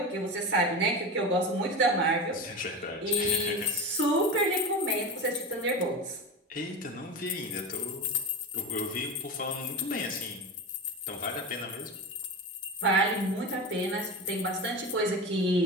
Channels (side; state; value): both; normal; correlation 0.24